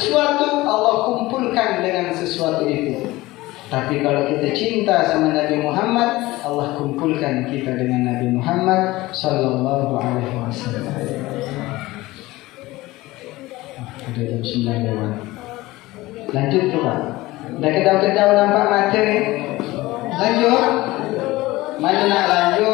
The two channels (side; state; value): right; quieter; 19.1 dB